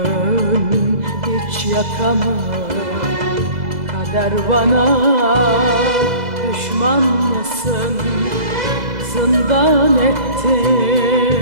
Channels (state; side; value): late; left; 2.0 ms